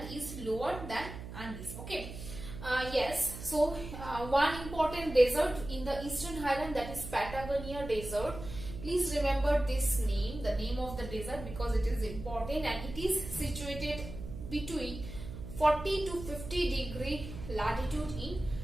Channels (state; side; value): noise; right; hum, 10 dB below the sound